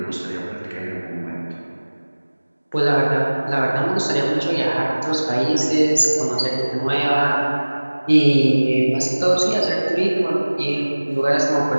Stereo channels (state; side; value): inverted; both; correlation -1.00